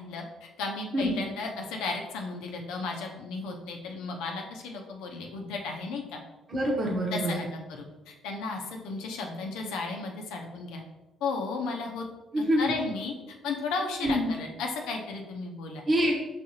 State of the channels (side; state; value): both; normal; correlation 0.69